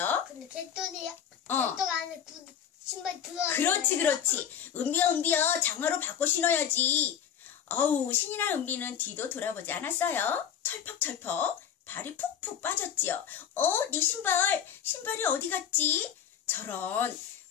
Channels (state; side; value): quieter; right; 8.9 dB